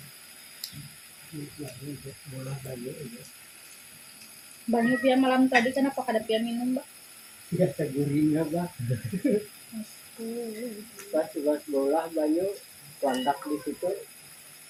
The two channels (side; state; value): both; identical; correlation 1.00